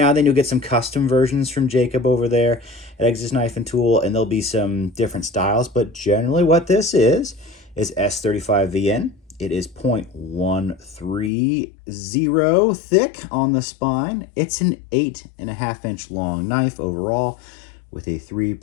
and then you'll get some custom versions from Jacob over there at Exodus Knife and Tool, and there'll be some different styles, but generally what this is S35VN. It is 0.130 thick on the spine. It's an 8.5 inch long knife overall with a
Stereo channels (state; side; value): drops out; right; at 11.3 s